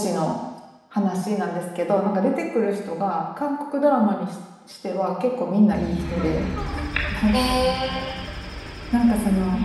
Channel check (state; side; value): identical; both; correlation 1.00